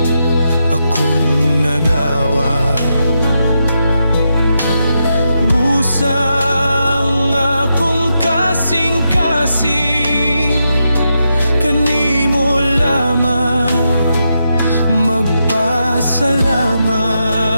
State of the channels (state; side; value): inverted; both; correlation -0.84